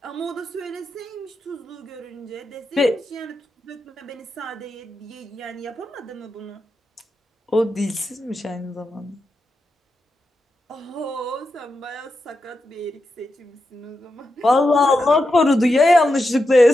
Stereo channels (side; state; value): both; normal; correlation 0.88